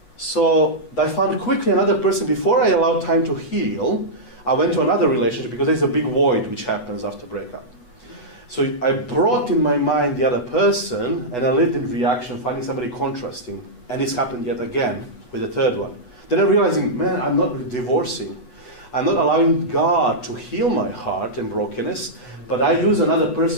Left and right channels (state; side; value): late; right; 8.1 ms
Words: So I found quickly another person. Before I allowed time to heal, I went to another relationship because there's a big void which happens after breakup. So I brought in my mind the other person, and I lived in reaction, finding somebody contrasting. And this happened yet again with the third one. Then I'm realizing, man, I'm not divorcing. I'm not allowing God to heal my heart and brokenness, but I use another